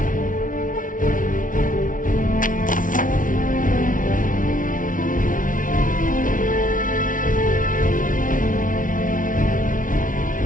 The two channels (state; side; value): late; right; 0.38 ms